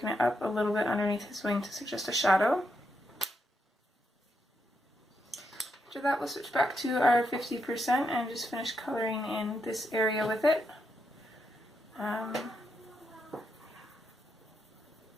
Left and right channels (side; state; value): both; normal; correlation 0.81